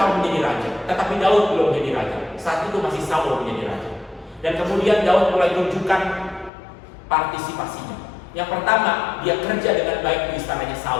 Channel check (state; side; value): drops out; right; at 6.5 s